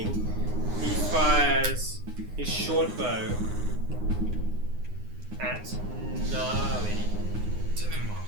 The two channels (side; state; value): left; late; 9.7 ms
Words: He fires his short bow at Gnarly.